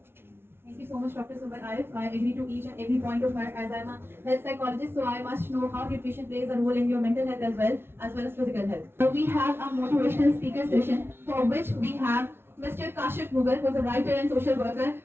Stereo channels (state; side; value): late; left; 0.11 ms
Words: Thank you so much, Dr. Sumbul Arif. I agree to each and every point of her, as I'm a health psychologist, so I must know how nutrition plays a role in your mental health as well as physical health. So we have a motivational speaker session for which we have Mr. Kashif Mughal, who is a writer and social worker.